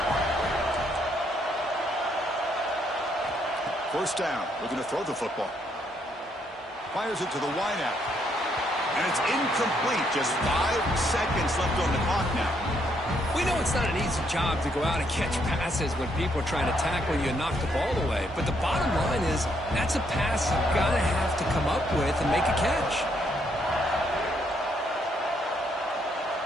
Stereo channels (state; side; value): normal; both; correlation 0.73